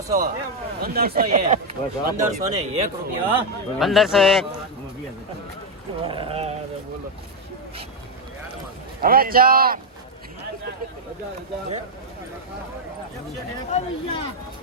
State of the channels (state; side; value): normal; both; correlation 0.02